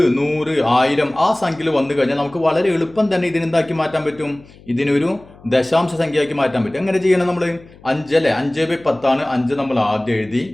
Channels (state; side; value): noise; left; hum, 24 dB below the sound